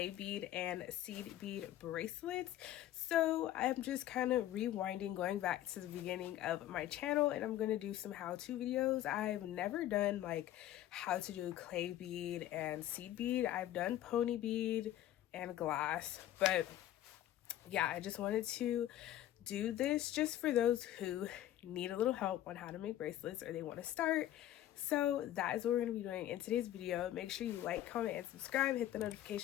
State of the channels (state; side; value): quieter; right; 13.0 dB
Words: bead and seed bead bracelets. So I'm just kind of rewinding, going back to the beginning of my channel, and I'm going to do some how-to videos. I've never done like how to do clay bead and seed bead. I've done pony bead and glass, but yeah, I just wanted to do this just for those who need a little help on how to make bracelets or they want to start. So that is what we're going to be doing in today's video. Make sure you like, comment, and subscribe. Hit the